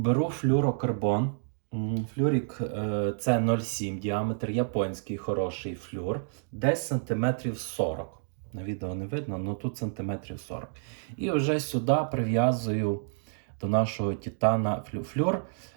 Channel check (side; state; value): left; silent; digital silence